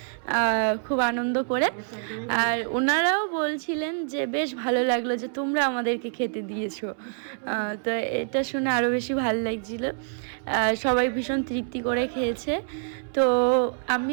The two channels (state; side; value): silent; left; 61 dB below the other